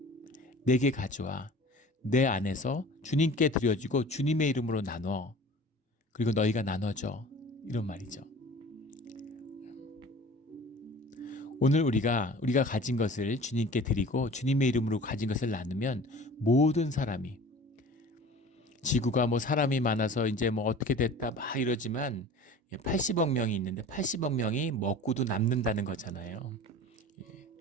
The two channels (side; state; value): both; normal; correlation 0.41